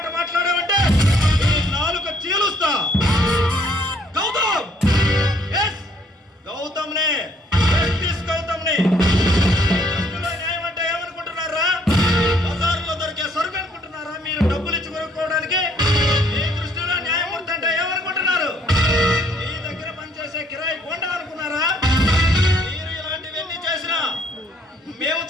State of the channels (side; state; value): both; normal; correlation 0.65